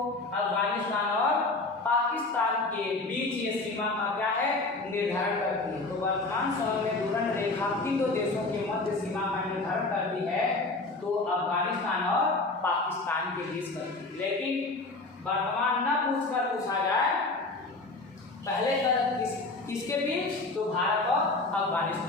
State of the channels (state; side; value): quieter; right; 3.3 dB